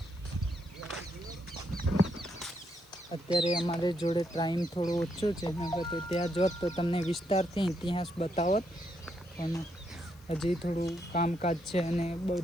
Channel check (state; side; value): noise; left; hiss, 27 dB below the sound